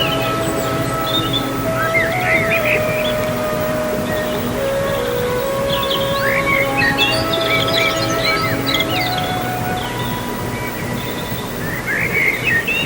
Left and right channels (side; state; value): both; identical; correlation 1.00